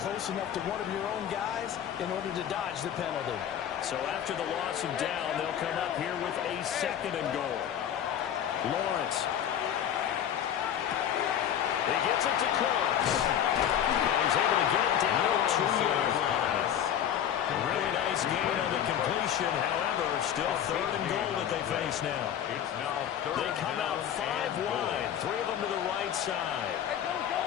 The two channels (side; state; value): right; quieter; 9.8 dB